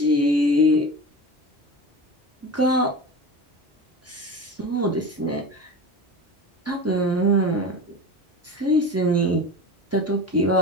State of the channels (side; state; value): both; normal; correlation 0.30